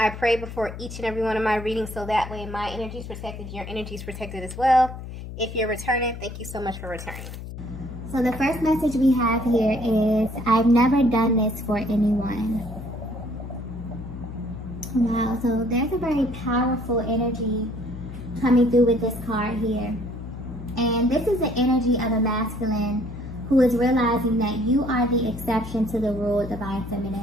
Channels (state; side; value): noise; left; hum, 10 dB below the sound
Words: pray before each and every one of my readings so that way my energy is protected, your energy is protected as well. If you're returning, thank you so much for returning. So the first message we have here is, I've never done this for anyone. Wow, so there's a very powerful energy coming through with this card here. And this is the energy of a masculine who is realizing that you are the exception to the rule, divine